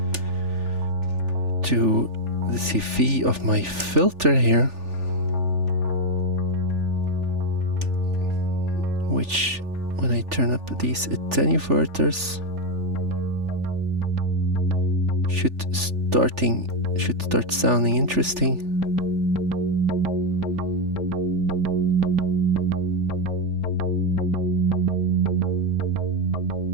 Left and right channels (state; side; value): late; left; 3.4 ms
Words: to the CV of my filter here, which when I turn up these attenuverters should start sounding interesting.